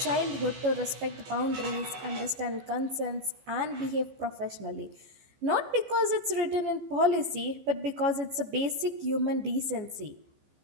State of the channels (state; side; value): late; left; 15 ms